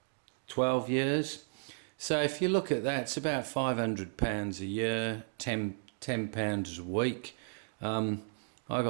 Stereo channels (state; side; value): silent; left; digital silence